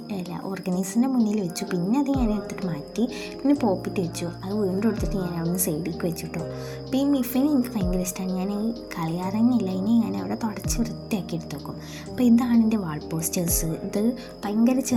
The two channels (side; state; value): both; identical; correlation 1.00